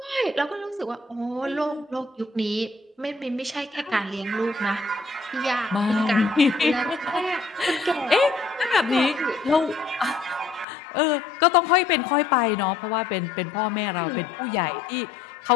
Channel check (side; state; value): right; drops out; at 10.7 s